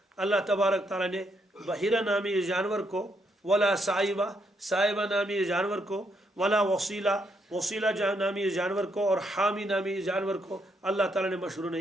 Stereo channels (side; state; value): both; normal; correlation 0.76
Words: اللہ تبارک تعالیٰ نے بحیرہ نامی جانور کو، ولا سائبہ نامی جانور کو، ولا وسیلہ نامی جانور کو، اور حامی نامی جانور کو اللہ تعالیٰ نے مشروع